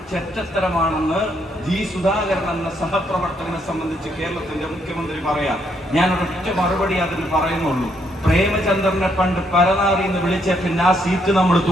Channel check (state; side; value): normal; both; correlation 0.73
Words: ചെറ്റത്തരമാണെന്ന് സുധാകരൻ എന്ന സഹപ്രവർത്തകനെ സംബന്ധിച്ച് കേരളത്തിന്റെ മുഖ്യമന്ത്രി പറയാം. ഞാൻ ഒരൊറ്റ മറുപടി അതിന് പറയുന്നുള്ളൂ. പ്രേമചന്ദ്രനെ പണ്ട് പരനാറി എന്ന് വിളിച്ച പിന്നെ ആ സീറ്റ് നമ്മൾ